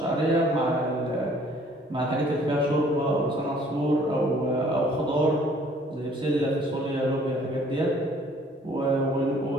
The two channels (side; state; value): both; normal; correlation 0.57